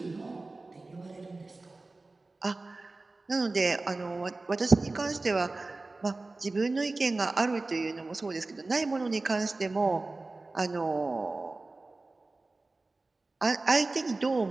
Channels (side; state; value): left; quieter; 3.3 dB